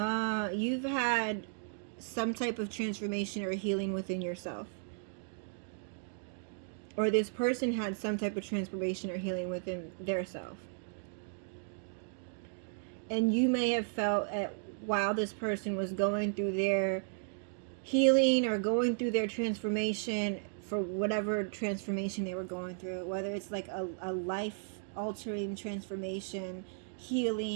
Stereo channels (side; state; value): left; silent; digital silence